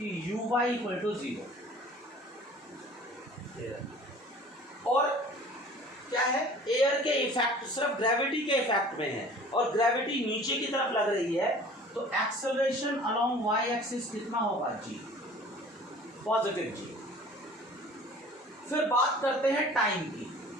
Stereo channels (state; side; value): normal; both; correlation 0.46